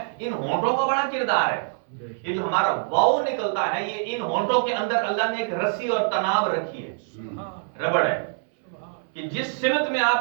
ان ہونٹوں کا بڑا کردار ہے۔ یہ جو ہمارا واو نکلتا ہے، یہ ان ہونٹوں کے اندر اللہ نے ایک رسی اور تناب رکھی ہے، ربڑ ہے، کہ جس سمت میں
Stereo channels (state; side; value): silent; left; 62 dB below the other